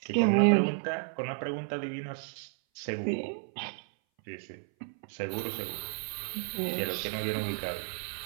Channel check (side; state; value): left; silent; 56 dB below the other